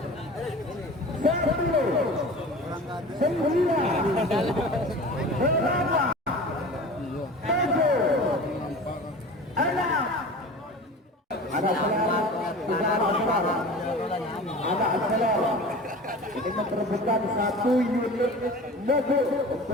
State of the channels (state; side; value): normal; both; correlation 0.38